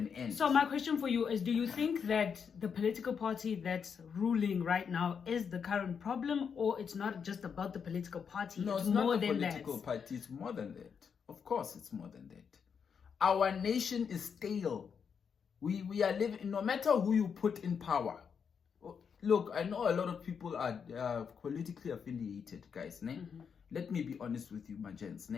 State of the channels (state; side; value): quieter; right; 6.7 dB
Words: end. So my question for you is, do you think that the political party that's ruling right now is the current problem, or it's not just about the political party? No, it's not the political party. It's more than that. Of course, it's more than that. Our nation is stale. We are living, no matter who you put in power. Look, I know a lot of people are politically affiliated, guys. let me be honest with you, my gents,